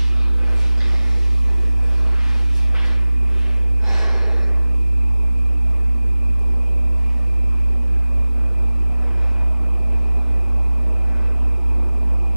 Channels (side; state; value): both; inverted; correlation -0.98